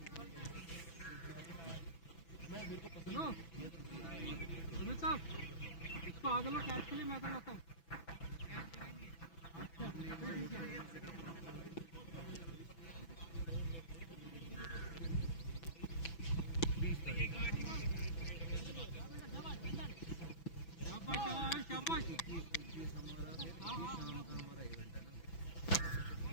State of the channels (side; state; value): right; late; 6.0 ms